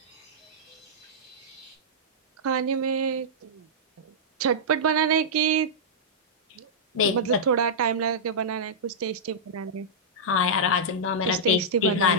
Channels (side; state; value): both; normal; correlation -0.12